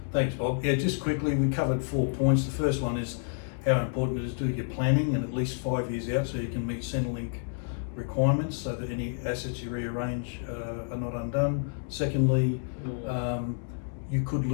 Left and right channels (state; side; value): silent; right; digital silence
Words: Thanks, Bob. Yeah, just quickly, we covered 4 points. The first one is how important it is to do your planning and at least 5 years out so you can meet Centrelink requirements so that any assets you rearrange are not undone. Secondly, you could